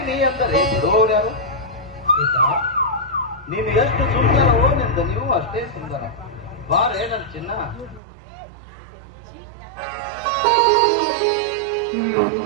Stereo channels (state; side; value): drops out; left; at 8.0 s